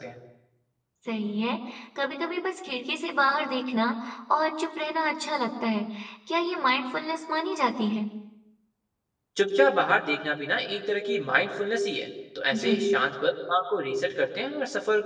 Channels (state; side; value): identical; both; correlation 1.00